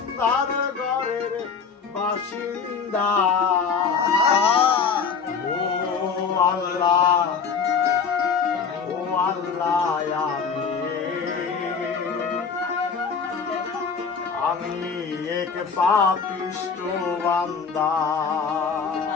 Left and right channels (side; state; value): right; quieter; 5.8 dB